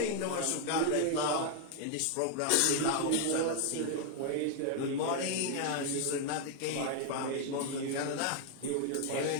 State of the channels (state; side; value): different; both; correlation 0.00